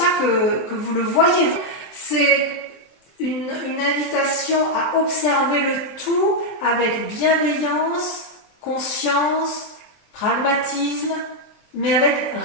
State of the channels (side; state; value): right; late; 23 ms